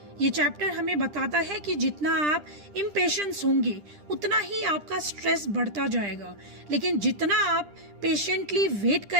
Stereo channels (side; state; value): left; late; 10 ms